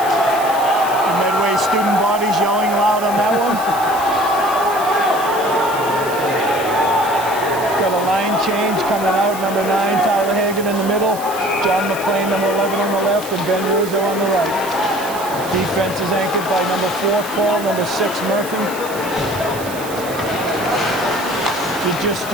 The Medway student body's yelling loud on that one. Got a line change coming out. Number 9, Tyler Hagan in the middle. John McLean, number 11 on the left, and Ben Rizzo on the right. Defense is anchored by number 4, Paul, number 6, Murphy. If you're just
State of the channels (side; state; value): right; noise; hiss, 13 dB below the sound